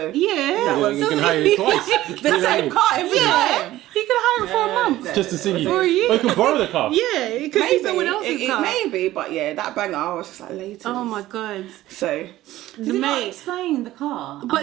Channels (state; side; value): quieter; left; 15.4 dB